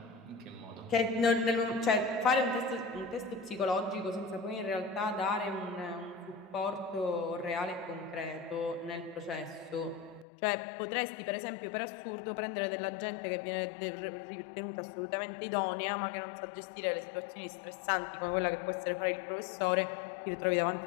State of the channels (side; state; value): right; drops out; at 10.2 s